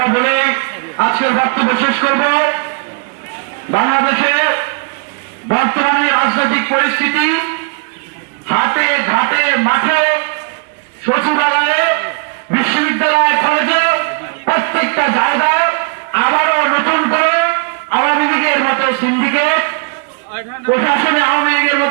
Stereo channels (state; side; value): quieter; left; 36.5 dB